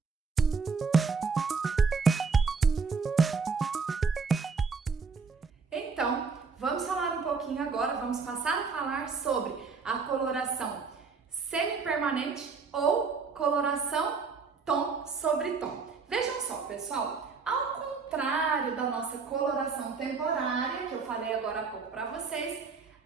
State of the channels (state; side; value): quieter; left; 4.9 dB